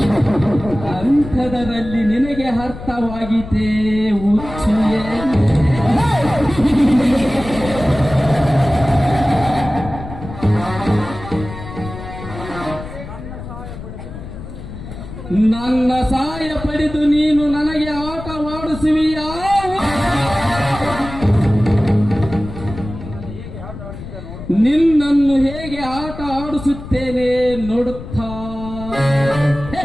ಅಂಥದರಲ್ಲಿ ನಿನಗೆ ಅರ್ಥವಾಗಿದೆ ಹುಚ್ಚುಯೇ. ನನ್ನ ಸಹಾಯ ಪಡೆದು ನೀನು ನನಗೆ ಆಟವಾಡಿಸುವಿಯಾ? ನಿನ್ನನ್ನು ಹೇಗೆ ಆಟ ಆಡಿಸುತ್ತೇನೆ ನೋಡುತ್ತಾ.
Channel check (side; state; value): left; noise; rumble, 11 dB below the sound